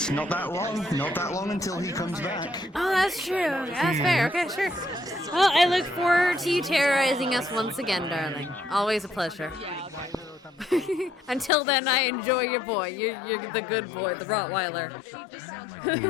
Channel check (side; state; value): right; drops out; at 11.5 s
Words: not that long. Not that long until he comes back. Oh, that's true. That's fair. Okay, sure. Well, I look forward to you terrorizing us once again, darling. Always a pleasure. Until then, I enjoy your boy. You're the good boy, the Rottweiler.